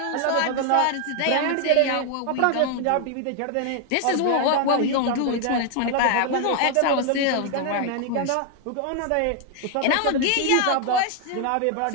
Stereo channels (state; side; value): different; both; correlation 0.00